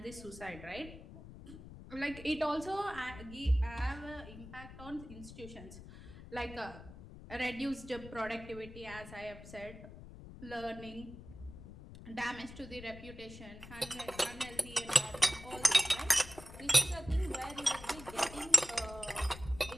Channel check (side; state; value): left; noise; rumble, 15 dB below the sound